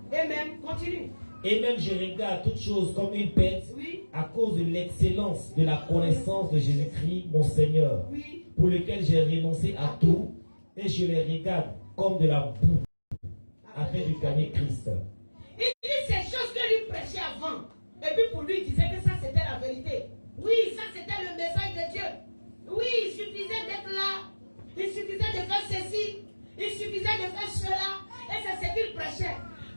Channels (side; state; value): both; inverted; correlation -1.00